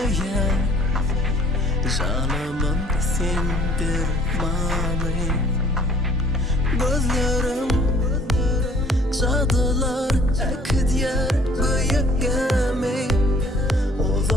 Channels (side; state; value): both; normal; correlation 0.55